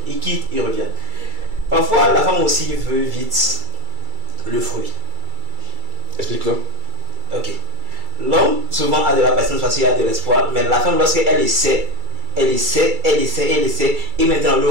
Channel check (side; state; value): left; late; 2.3 ms